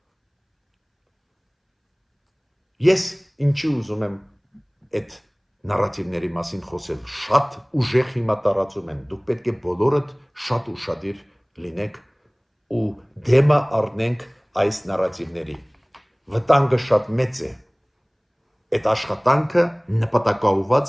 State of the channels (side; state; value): both; identical; correlation 1.00